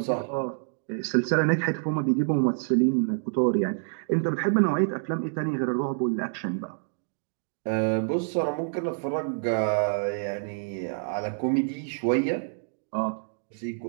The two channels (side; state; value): left; silent; digital silence